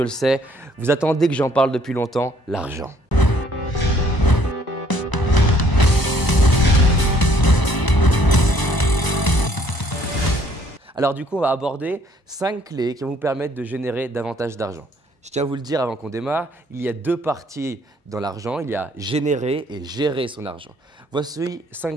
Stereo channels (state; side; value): late; right; 1.0 ms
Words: le sais, vous attendez que j'en parle depuis longtemps, l'argent. Alors du coup on va aborder 5 clés qui vont vous permettre de générer davantage d'argent. Je tiens à vous le dire avant qu'on démarre, il y a deux parties dans l'argent, il y a générer et gérer son argent. Voici